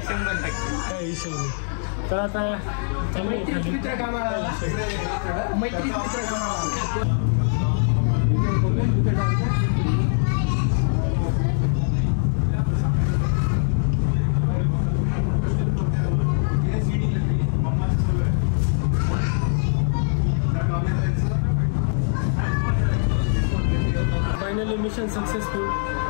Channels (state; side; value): silent; right; 64 dB below the other